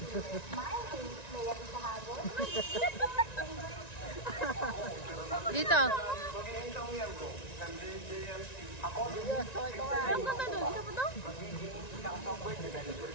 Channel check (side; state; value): right; late; 1.9 ms